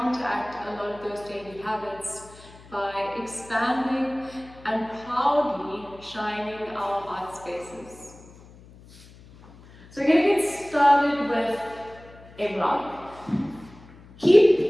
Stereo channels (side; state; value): left; noise; hum, 22 dB below the sound